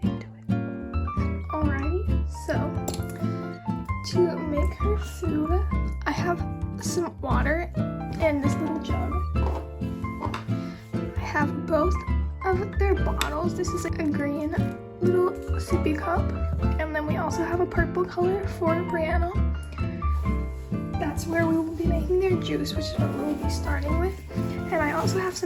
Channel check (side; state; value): both; identical; correlation 1.00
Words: into it. Alrighty, so to make her food, I have some water in this little jug. I have both of their bottles. This is a green little sippy cup, and then we also have a purple color for Brianna. That's where we will be making their juice, which is what we'll be starting with. And I also have